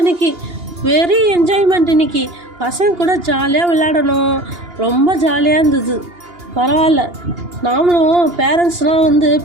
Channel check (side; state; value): left; late; 2.8 ms